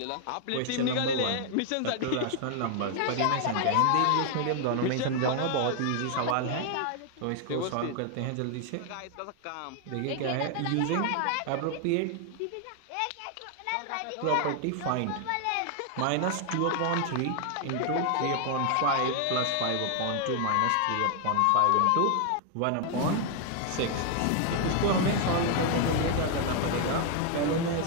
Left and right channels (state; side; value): different; both; correlation 0.00